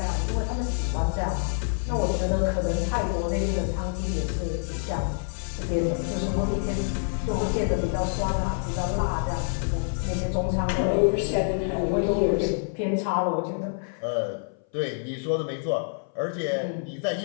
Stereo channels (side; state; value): right; silent; 57 dB below the other